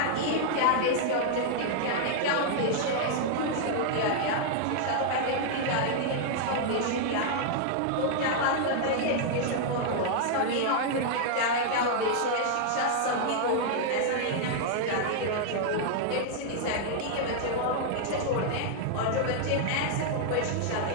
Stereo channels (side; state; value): both; different; correlation -0.01